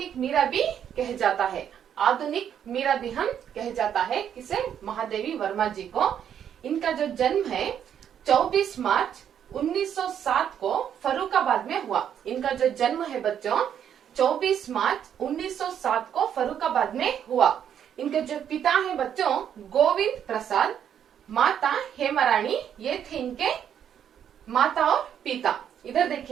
मीरा भी कह जाता है। आधुनिक मीरा भी हम कह जाता है किसे? महादेवी वर्मा जी को। इनका जो जन्म है 24 मार्च 1907 को फर्रुखाबाद में हुआ। इनका जो जन्म है बच्चों 24 मार्च 1907 को फर्रुखाबाद में हुआ। इनके जो पिता है बच्चों गोविंद प्रसाद, माता हेमारानी, ये थे इनके माता और पिता। इधर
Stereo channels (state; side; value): quieter; left; 9.1 dB